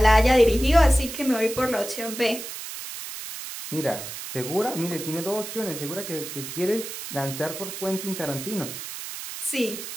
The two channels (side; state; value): right; noise; hiss, 9 dB below the sound